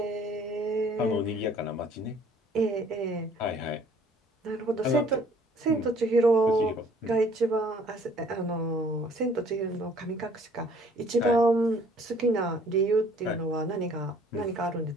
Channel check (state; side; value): normal; both; correlation 0.57